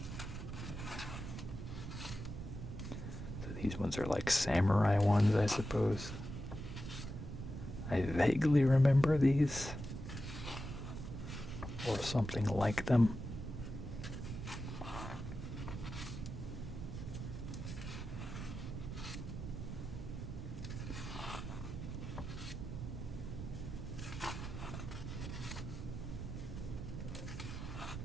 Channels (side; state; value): right; noise; rumble, 7 dB below the sound